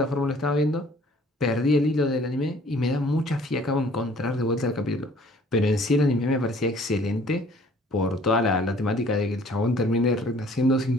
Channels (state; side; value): normal; both; correlation 0.55